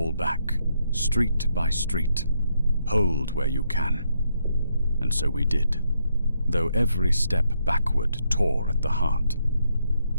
back, street by street. Hold where you can. And so we did, though every step backward tore at the heart.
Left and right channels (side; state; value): both; inverted; correlation -0.77